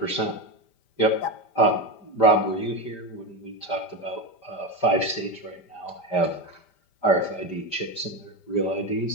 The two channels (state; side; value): late; right; 5.1 ms